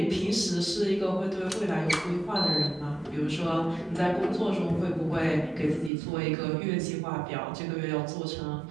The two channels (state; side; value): drops out; left; at 5.9 s